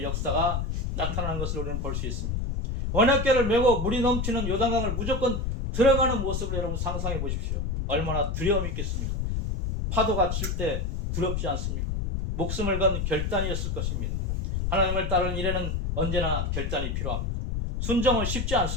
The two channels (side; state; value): left; noise; rumble, 1 dB below the sound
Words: 역사가 나타나는 것을 우리는 볼 수 있습니다. 언약궤를 메고 물이 넘치는 요단강을 무조건 들어가는 모습을 여러분 상상해 보십시오. 얼마나 두려움이 있겠습니까? 파도가 칠 때 두렵지 않습니까? 목숨을 건 결단이었을 것입니다. 하나님을 따르는 일에는 언제나 결단이 필요합니다. 순종은 쉽지